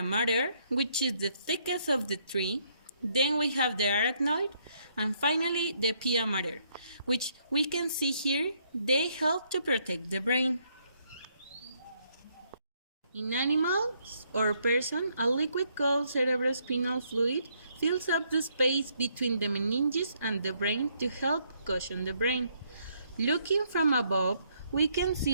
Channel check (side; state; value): both; inverted; correlation -0.71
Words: mater, which is the thickest of the three. Then we have the arachnoid, and finally the pia mater, which we can see here. They help to protect the brain. In animals or person, a liquid called cerebrospinal fluid fills up the space between the meninges and the brain to help cushion the brain. Looking from above, we can